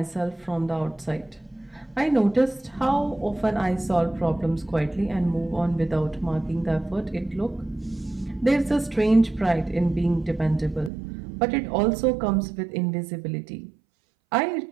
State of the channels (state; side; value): drops out; left; at 10.9 s